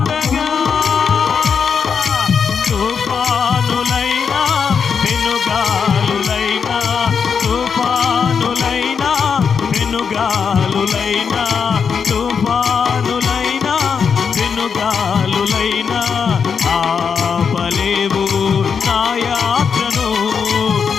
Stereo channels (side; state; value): right; quieter; 6.4 dB